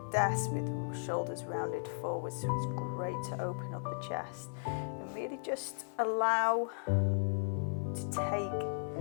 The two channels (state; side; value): silent; right; digital silence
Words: desk with shoulders rounded forward, so it's great to open up the chest and really just allow to take